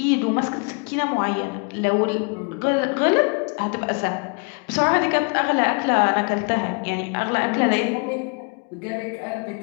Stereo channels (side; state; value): right; quieter; 34.2 dB